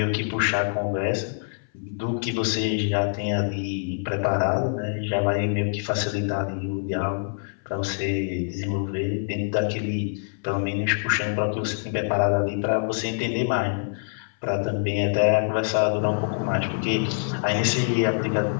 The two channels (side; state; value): right; silent; 62 dB below the other